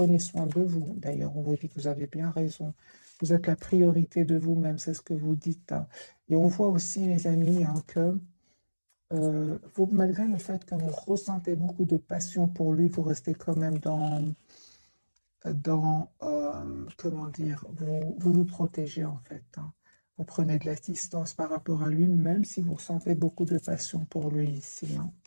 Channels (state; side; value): inverted; both; correlation -1.00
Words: soin de vous. D'ailleurs, on vous dit que vous avez bien raison. Vous êtes la priorité de vous-même. C'est ce que vous dites. Hein. Et on voit aussi, les amis, hein, que malgré le fait que vous ressentez beaucoup de passion pour lui, vous restez quand même comment dire, vous protégez en fait. Hein. Vous prenez de la distance par rapport à lui, même si vous ressentez beaucoup de passion pour lui ici. Hein.